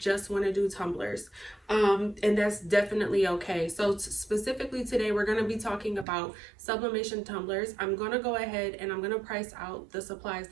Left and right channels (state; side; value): drops out; left; at 6.1 s